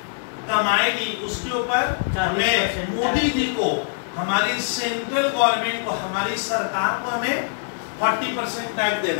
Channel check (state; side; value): silent; right; digital silence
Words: कमाएगी उसके ऊपर हमें मोदी जी को, हमारी सेंट्रल गवर्नमेंट को, हमारी सरकार को हमें 40% टैक्स